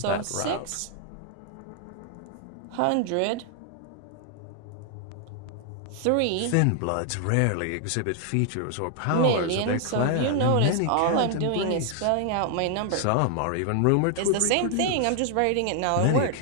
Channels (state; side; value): different; both; correlation 0.00